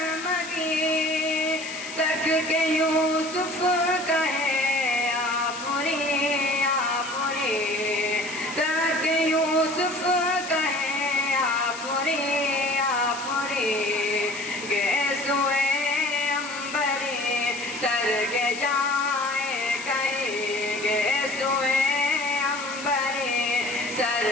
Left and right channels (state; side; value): noise; left; hiss, 11 dB below the sound